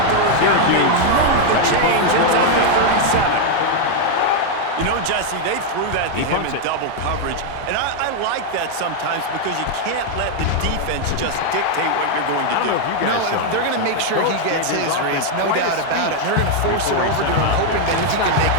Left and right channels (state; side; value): different; both; correlation 0.00